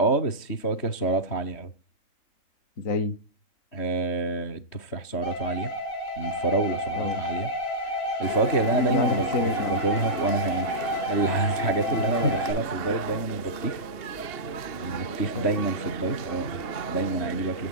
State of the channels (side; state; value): right; late; 2.8 ms